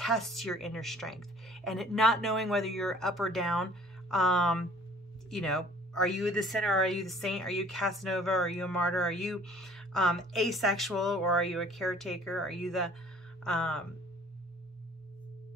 your inner strength, and it not knowing whether you're up or down. You know, are you the sinner? Are you the saint? Are you Casanova? Are you a martyr? Are you asexual, or are you a caretaker? Are you the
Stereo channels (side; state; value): both; normal; correlation 0.52